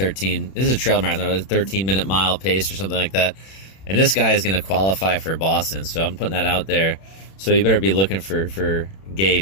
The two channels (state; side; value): late; right; 31 ms